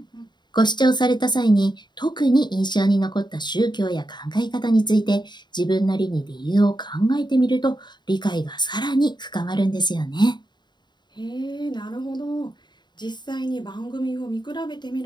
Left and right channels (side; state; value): right; late; 0.21 ms